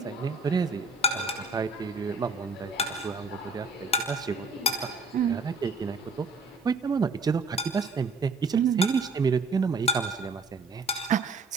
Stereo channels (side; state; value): left; quieter; 3.7 dB